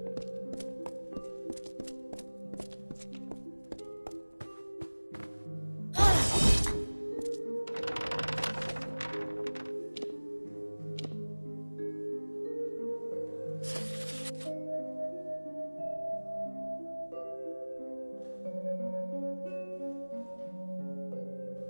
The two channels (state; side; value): inverted; both; correlation -1.00